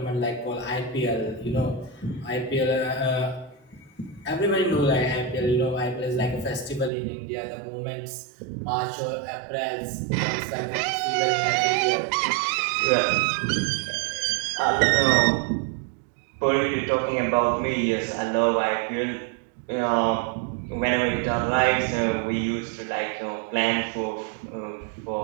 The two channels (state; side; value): drops out; left; at 6.9 s